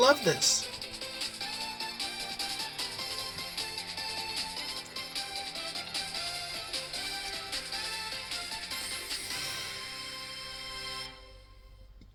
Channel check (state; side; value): identical; both; correlation 1.00